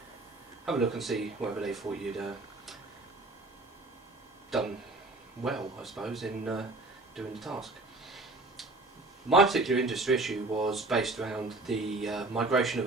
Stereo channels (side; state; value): left; quieter; 3.2 dB